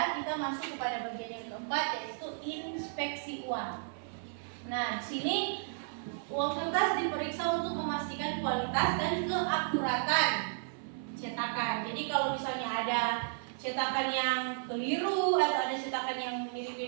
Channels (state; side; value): silent; left; 55 dB below the other